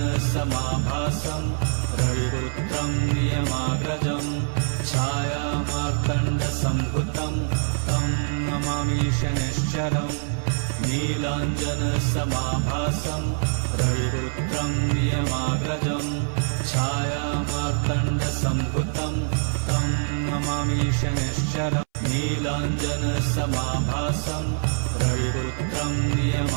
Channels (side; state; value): left; silent; 62 dB below the other